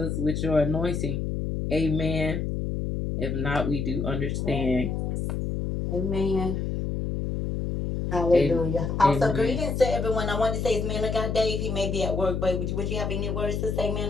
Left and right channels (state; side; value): noise; left; hum, 2 dB below the sound